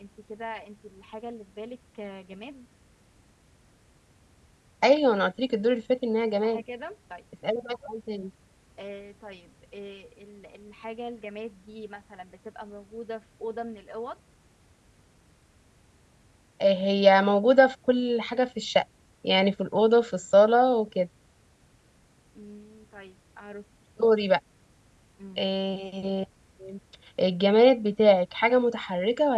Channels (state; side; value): identical; both; correlation 1.00